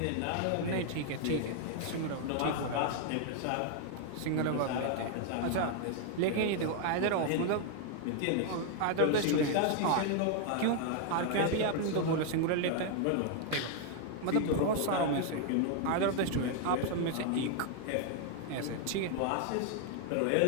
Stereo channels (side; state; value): both; different; correlation 0.00